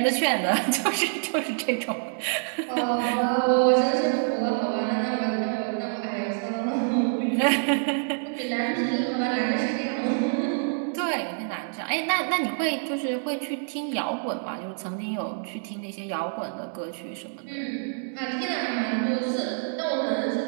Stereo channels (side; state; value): left; silent; 60 dB below the other